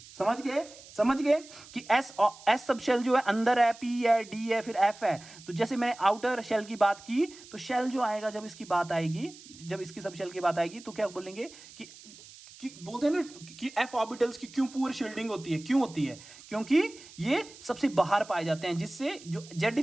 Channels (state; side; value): noise; right; hiss, 19 dB below the sound